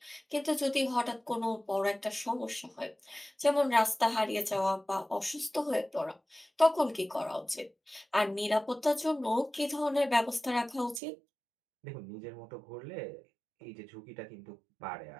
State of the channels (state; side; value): drops out; left; at 11.0 s